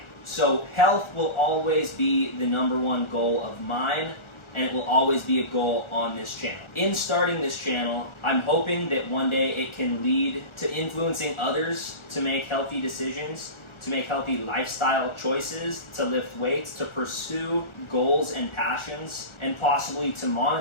So health will always be the #1 goal of mine, and it will always be a goal on this channel. In starting this channel, I'm hoping that one day it can lead to influencing others to make healthy decisions, to make healthy lifestyle choices, to lift weights, to pursue goals and passions, and possibly to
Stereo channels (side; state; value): right; late; 1.4 ms